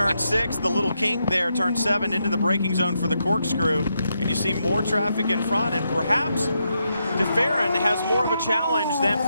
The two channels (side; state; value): both; inverted; correlation -0.82